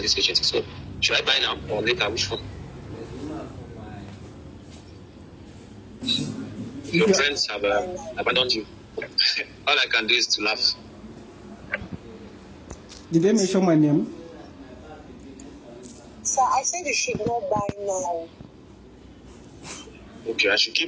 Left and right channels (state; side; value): identical; both; correlation 1.00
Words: this agency. So, should I buy now or later? Which one? Your friends have abandoned you. All I can do is to laugh. Did they mention my name? Sir, I said you should not buy now. Okay, I should